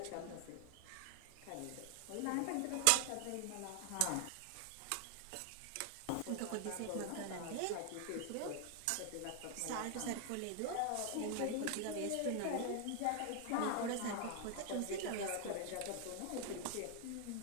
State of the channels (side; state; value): both; different; correlation 0.00